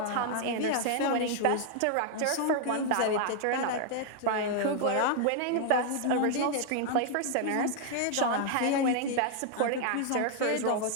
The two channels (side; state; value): both; different; correlation 0.00